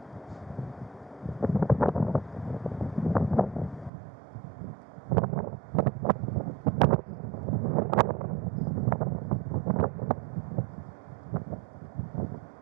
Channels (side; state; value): left; drops out; at 3.9 s